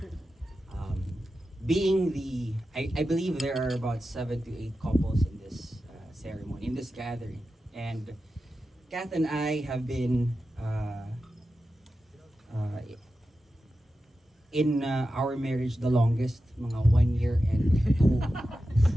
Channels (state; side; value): normal; both; correlation 0.92